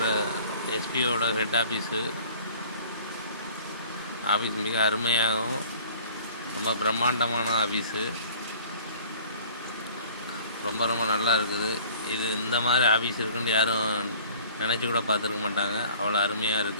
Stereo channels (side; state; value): both; inverted; correlation -0.49